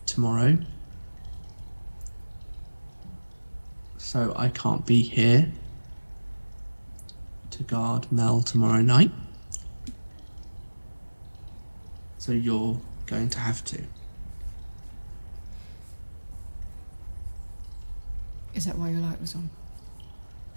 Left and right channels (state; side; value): inverted; both; correlation -1.00